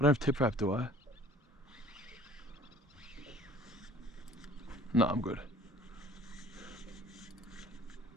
have tip wrap, do I? No, I'm good.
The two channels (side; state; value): both; normal; correlation 0.50